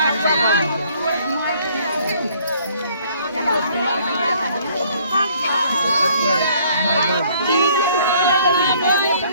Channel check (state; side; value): inverted; both; correlation -0.60